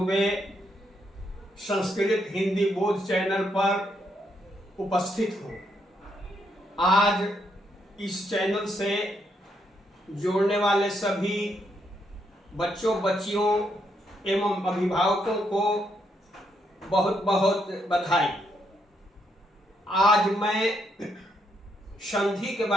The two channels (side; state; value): both; normal; correlation 0.77